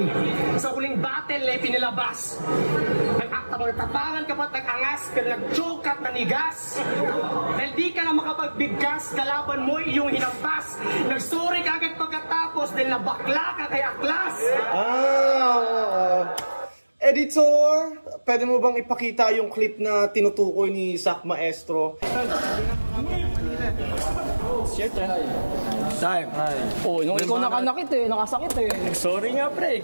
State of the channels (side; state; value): both; inverted; correlation -1.00